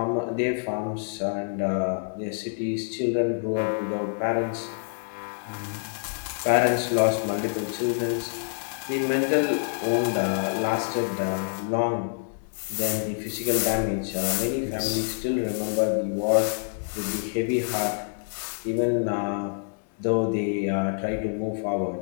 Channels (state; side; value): silent; right; digital silence